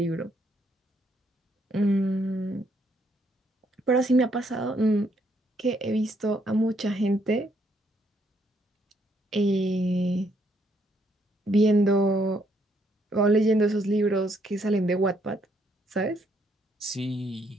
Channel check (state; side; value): normal; both; correlation 0.72